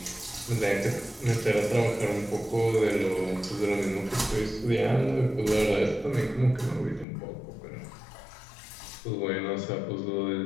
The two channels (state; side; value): drops out; right; at 7.1 s